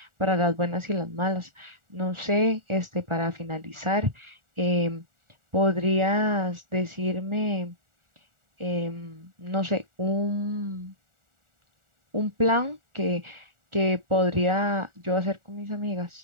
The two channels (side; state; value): left; late; 1.4 ms